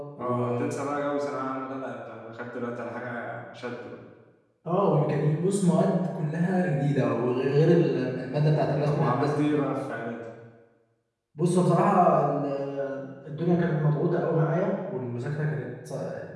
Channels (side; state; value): both; identical; correlation 1.00